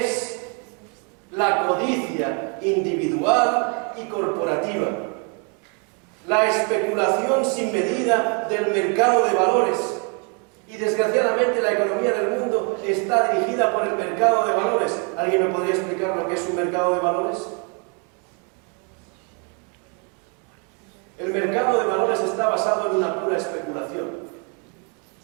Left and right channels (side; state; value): left; quieter; 36.6 dB